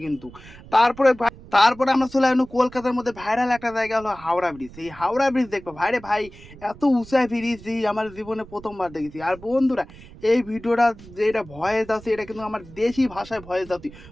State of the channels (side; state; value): right; noise; rumble, 19 dB below the sound